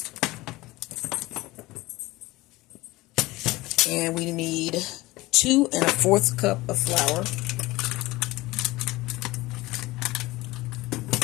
And we need 2 1/4 cup of flour.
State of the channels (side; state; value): right; quieter; 19.8 dB